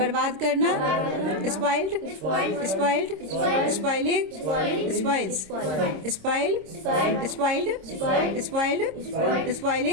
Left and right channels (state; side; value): late; left; 26 ms